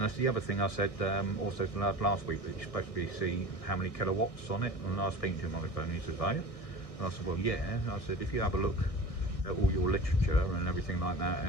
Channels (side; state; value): right; late; 1.6 ms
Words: that's the other thing I said also last week, that you're supposed to be see how many kilowatts on it. And I was speaking to him on the phone, he said, "Oh." And I said, well, yeah. I said, if you have a look at all your literature and everything like that,